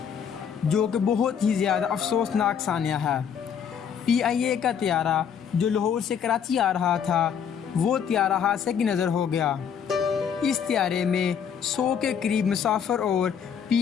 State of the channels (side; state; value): right; quieter; 7.7 dB